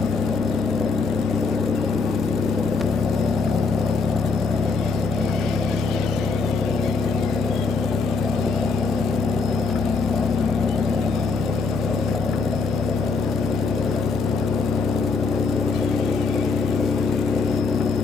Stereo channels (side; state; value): right; quieter; 4.5 dB